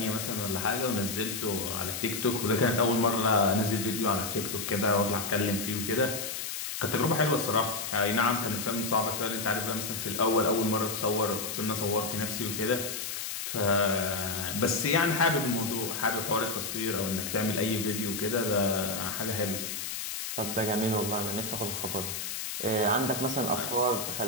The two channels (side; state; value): left; noise; hiss, 5 dB below the sound